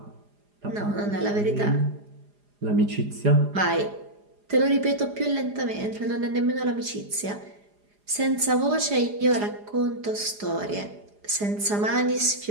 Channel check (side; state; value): left; late; 4.9 ms